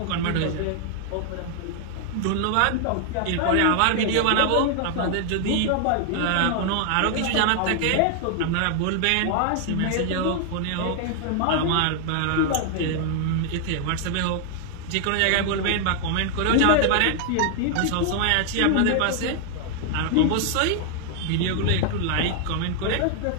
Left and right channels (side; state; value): both; different; correlation 0.00